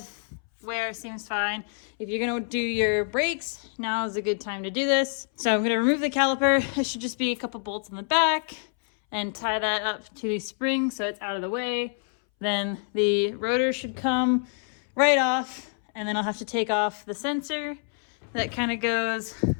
wear seems fine. If you're gonna do your brakes, now is a good time to do this. So I'm gonna remove the caliper. It should just be a couple bolts on the back and tie that up to the spring so it's out of the way. Then the rotor should come right off, and then I'll have to take off the sensor that kind of goes, I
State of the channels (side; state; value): right; silent; 60 dB below the other